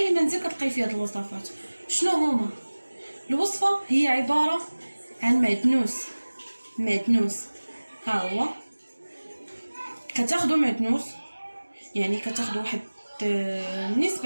منزل كتلقاي فيه هاد الوصفات. شنو هما؟ الوصفه هي عباره عن معدنوس. ها هو، كتاخذوا معدنوس، يعني كتاخذوا واحد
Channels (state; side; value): inverted; both; correlation -1.00